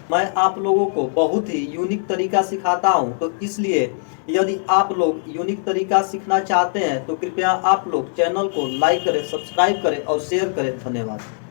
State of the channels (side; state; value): right; silent; digital silence